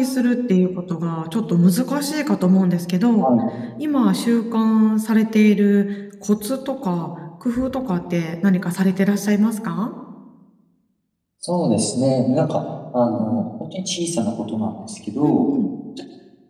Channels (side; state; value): both; identical; correlation 1.00